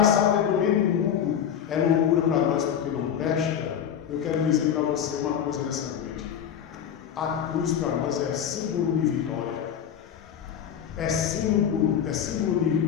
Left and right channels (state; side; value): quieter; right; 8.8 dB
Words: sabedoria do mundo é loucura para nós porque não presta. Eu quero dizer para você uma coisa nessa noite: a cruz para nós é símbolo de vitória, é símbolo de